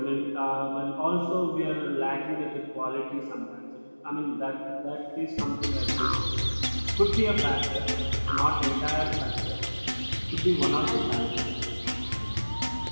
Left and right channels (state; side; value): inverted; both; correlation -1.00